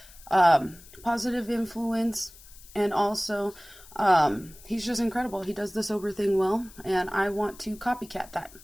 positive influence, and also he's just incredible. He does the sober thing well, and I want to copycat that.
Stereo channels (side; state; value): left; noise; hiss, 21 dB below the sound